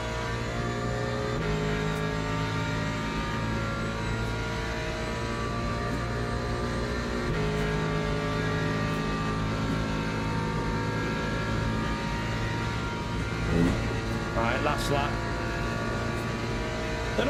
Last lap. Don't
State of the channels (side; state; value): both; identical; correlation 1.00